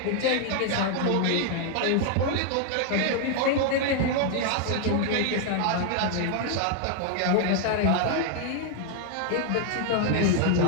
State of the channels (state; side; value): different; both; correlation 0.00